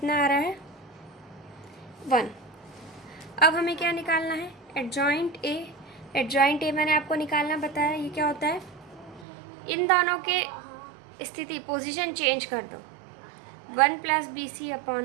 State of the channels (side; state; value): left; drops out; at 9.2 s